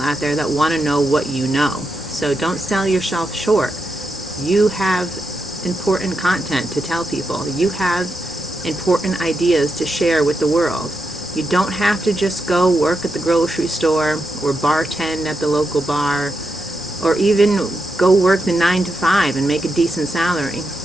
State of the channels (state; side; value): normal; both; correlation 0.85